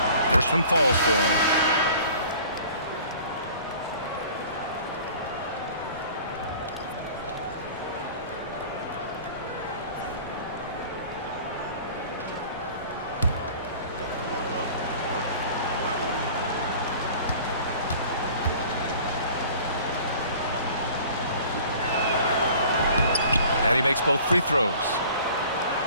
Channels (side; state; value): both; inverted; correlation -0.47